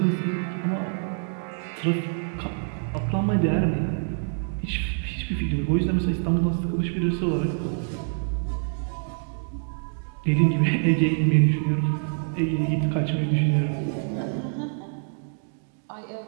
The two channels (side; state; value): left; silent; digital silence